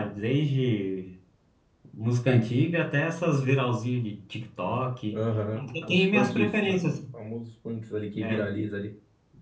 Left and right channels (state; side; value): identical; both; correlation 1.00